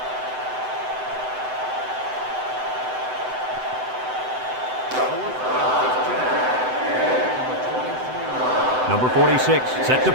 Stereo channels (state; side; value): late; left; 7.9 ms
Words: Number 46 set to